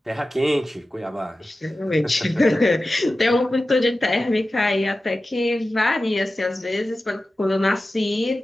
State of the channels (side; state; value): both; normal; correlation 0.94